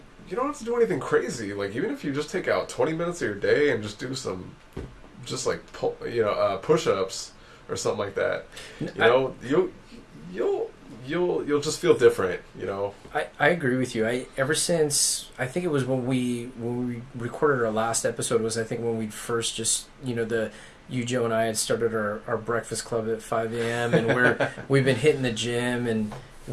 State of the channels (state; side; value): identical; both; correlation 1.00